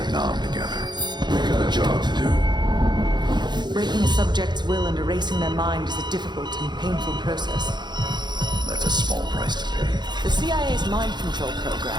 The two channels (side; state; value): left; late; 0.21 ms